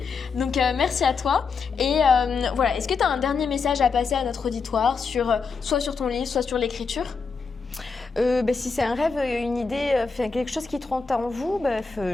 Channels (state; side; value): quieter; right; 5.0 dB